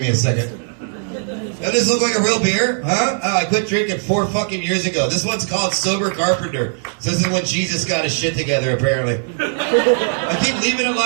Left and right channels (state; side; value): silent; left; digital silence